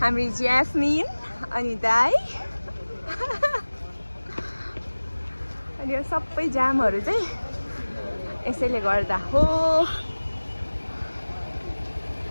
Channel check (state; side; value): inverted; both; correlation -1.00